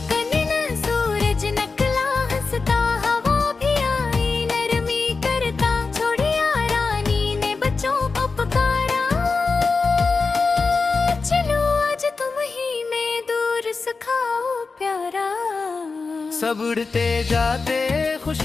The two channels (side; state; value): right; quieter; 4.3 dB